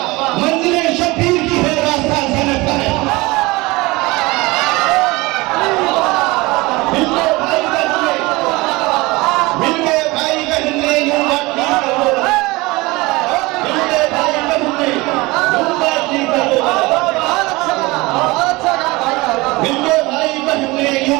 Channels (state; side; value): quieter; left; 22.5 dB